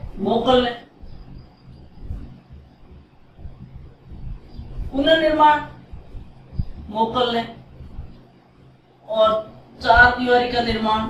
मोगल ने। पुनर्निर्माण मोगल ने, और 4 दीवारी का निर्माण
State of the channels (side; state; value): both; identical; correlation 1.00